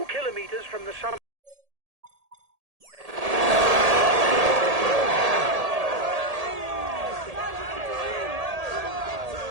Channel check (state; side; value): late; left; 1.8 ms